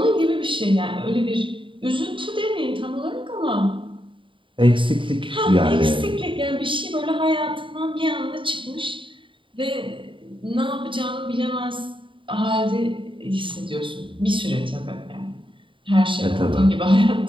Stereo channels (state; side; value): late; left; 0.25 ms